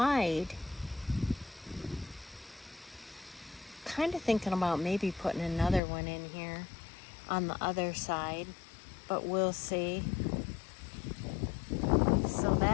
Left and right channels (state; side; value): drops out; right; at 5.8 s